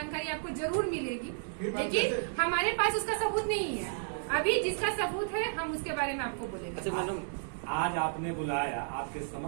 आपको जरूर मिलेगी, लेकिन हमारे पास उसका सबूत नहीं है। अभी जिसका सबूत है हम उसके बारे में आपको बोलेंगे। अच्छा मैडम, आज आपने बुलाया, आपके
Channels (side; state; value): left; silent; digital silence